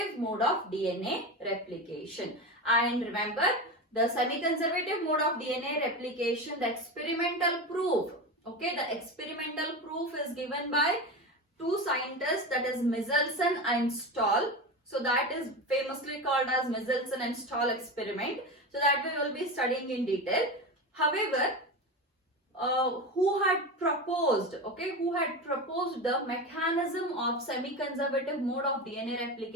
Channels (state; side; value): normal; both; correlation 0.23